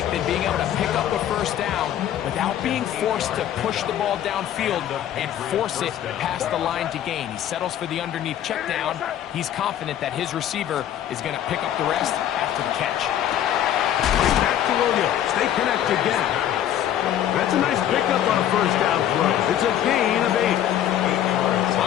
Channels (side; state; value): right; quieter; 11.1 dB